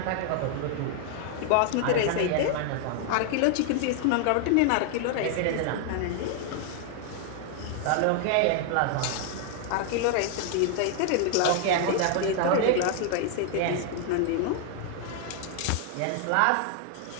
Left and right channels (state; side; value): different; both; correlation 0.00